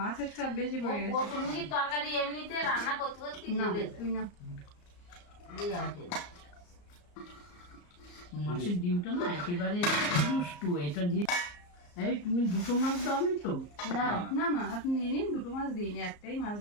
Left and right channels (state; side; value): late; right; 34 ms